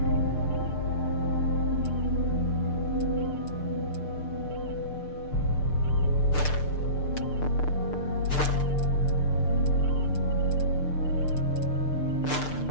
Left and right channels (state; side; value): late; right; 6.7 ms